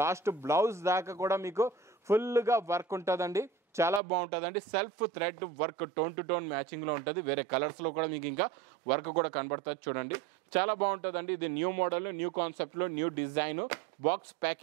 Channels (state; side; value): drops out; left; at 4.0 s